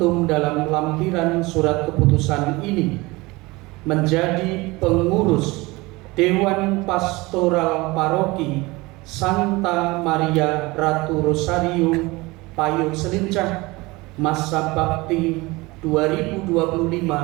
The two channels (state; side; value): quieter; left; 22.6 dB